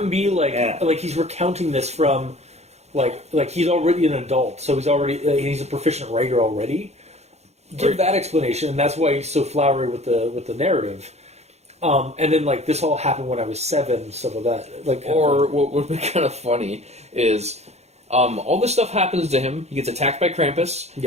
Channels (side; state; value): left; late; 0.31 ms